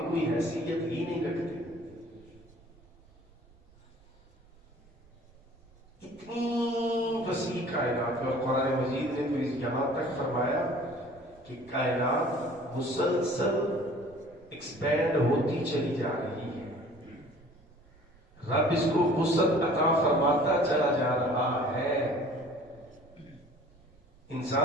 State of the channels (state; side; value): normal; both; correlation 0.49